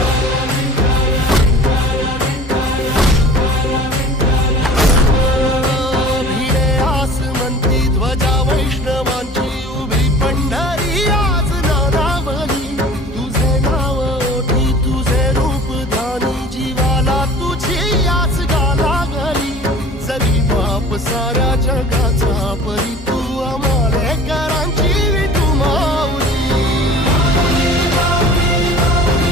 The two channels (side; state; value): both; normal; correlation 0.43